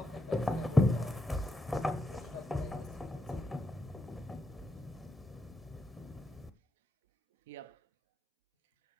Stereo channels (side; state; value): both; normal; correlation 0.84